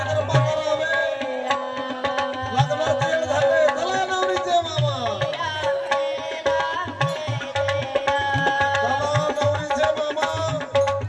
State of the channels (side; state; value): both; identical; correlation 1.00